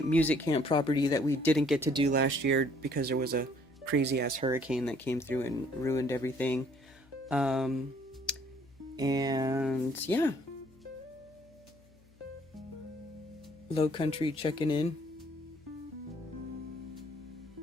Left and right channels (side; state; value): left; noise; hum, 28 dB below the sound